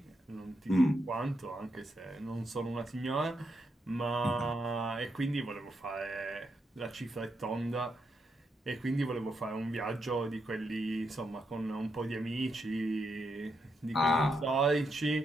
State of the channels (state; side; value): normal; both; correlation 0.81